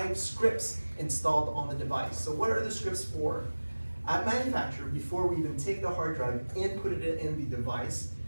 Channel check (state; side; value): inverted; both; correlation -1.00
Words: scripts installed on the device. So what are the scripts for? At manufacture, before we even take the hard drive and put it in the device,